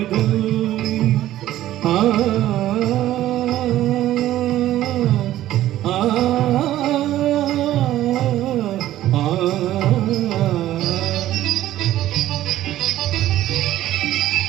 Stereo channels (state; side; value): quieter; left; 13.8 dB